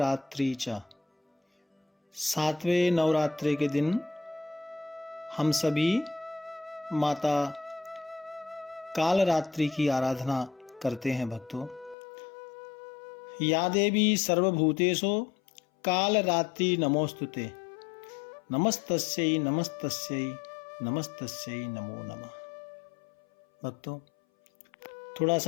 च, सातवें नवरात्रि के दिन हम सभी माता काल रात्रि की आराधना करते हैं। भक्तों, या देवी सर्वभूतेषु काल रात्रि नमोस्तुते, नमस्तस्यै नमस्तस्यै नमस्तस्यै नमो नमः। भक्तों, थोड़ा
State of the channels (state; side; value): drops out; right; at 12.0 s